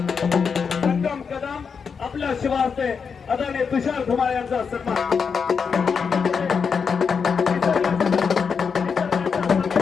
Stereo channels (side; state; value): right; quieter; 6.0 dB